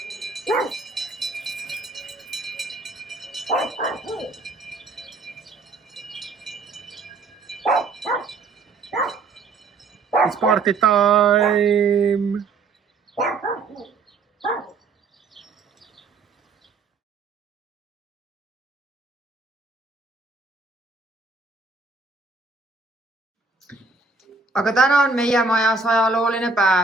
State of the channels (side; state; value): left; quieter; 4.0 dB